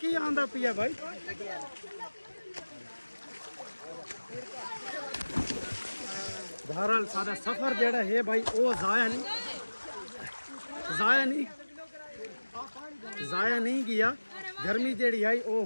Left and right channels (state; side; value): inverted; both; correlation -1.00